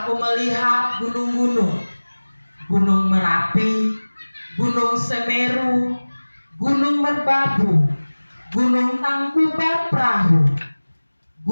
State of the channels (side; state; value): both; inverted; correlation -1.00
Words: melihat gunung-gunung, Gunung Merapi, Gunung Semeru, Gunung Merbabu, Gunung Tangkuban Perahu,